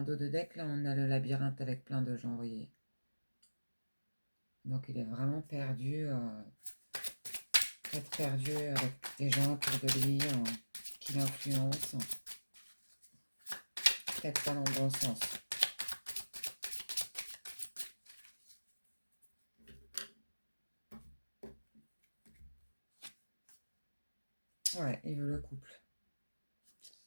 dos de deck, là, on a le labyrinthe avec plein de gens, vous voyez. Donc il est vraiment perdu. Peut-être perdu avec des gens autour de lui qui l'influencent. Peut-être pas dans le bon sens. Ouais, il veut le couple.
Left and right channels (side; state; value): both; inverted; correlation -1.00